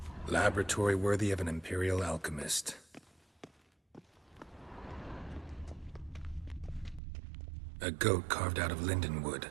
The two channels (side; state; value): left; drops out; at 7.0 s